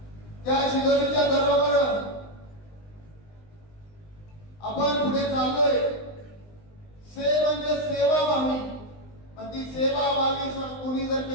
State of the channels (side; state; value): right; late; 20 ms